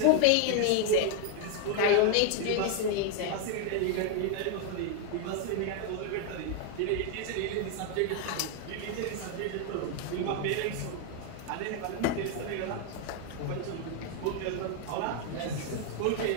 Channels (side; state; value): both; different; correlation 0.00